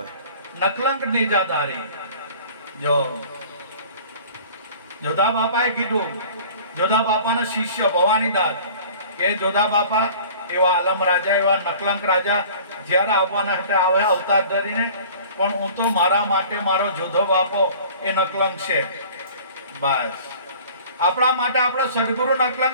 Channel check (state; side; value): inverted; both; correlation -0.46